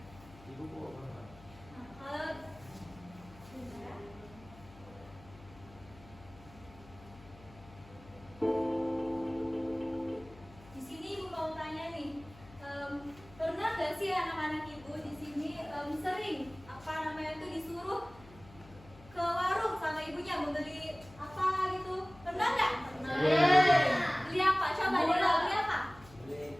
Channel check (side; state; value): left; noise; hum, 21 dB below the sound